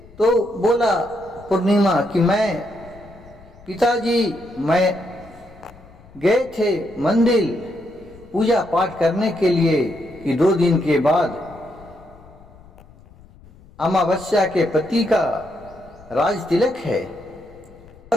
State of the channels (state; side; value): noise; left; rumble, 23 dB below the sound